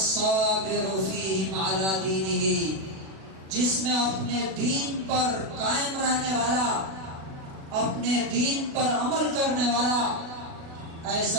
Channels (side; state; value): left; late; 37 ms